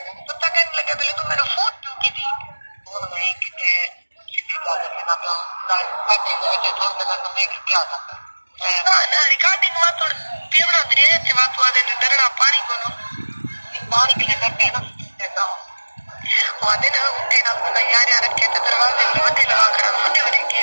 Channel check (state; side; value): inverted; both; correlation -1.00